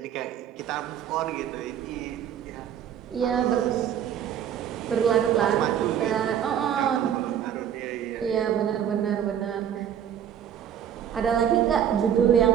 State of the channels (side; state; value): left; quieter; 9.4 dB